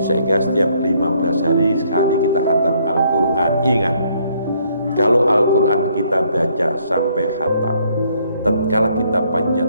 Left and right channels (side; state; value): both; inverted; correlation -0.68